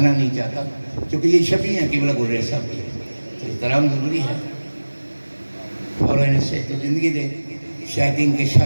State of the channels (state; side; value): inverted; both; correlation -1.00